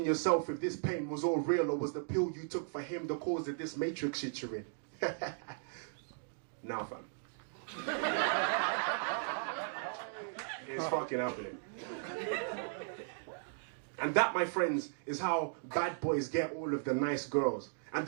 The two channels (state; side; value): silent; left; digital silence